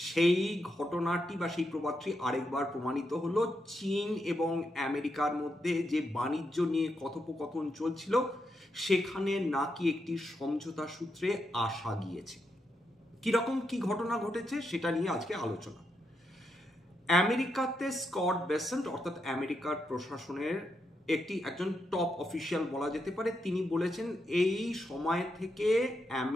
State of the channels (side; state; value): both; normal; correlation 0.82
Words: সেই ঘটনাটি বা সেই প্রবাদটি আরেকবার প্রমাণিত হলো। চীন এবং আমেরিকার মধ্যে যে বাণিজ্য নিয়ে কথোপকথন চলছিল সেখানে নাকি একটি সমঝোতা সূত্রে আসা গিয়েছে। কিরকম কি ঘটনা ঘটেছে সেটা নিয়ে আজকে আলোচনা। আমেরিকাতে স্কট বেসেন্ট অর্থাৎ আমেরিকার প্রশাসনের একজন টপ অফিসিয়াল বলা যেতে পারে, তিনি বলেছেন এই সময় থেকে